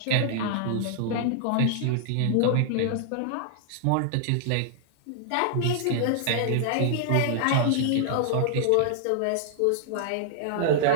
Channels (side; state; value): both; different; correlation -0.01